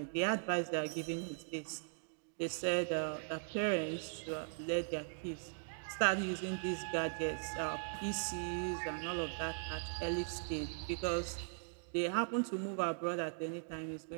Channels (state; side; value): silent; left; digital silence